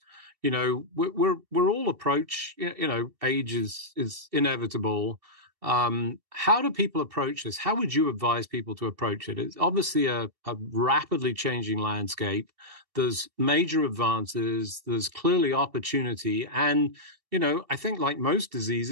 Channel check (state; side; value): late; left; 2.7 ms